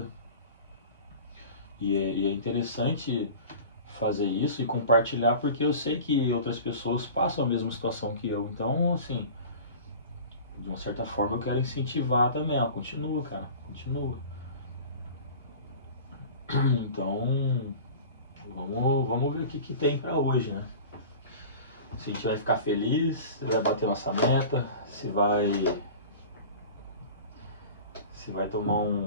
E é interessante fazer isso e compartilhar porque eu sei que outras pessoas passam a mesma situação que eu. Então, assim, de uma certa forma eu quero incentivar também. Ó, continua, cara, continua. Então, vamos ver o que tem pra hoje, né? Se a gente vai ficar feliz, se vai bater nossa meta, se vai tomar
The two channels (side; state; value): both; inverted; correlation -0.39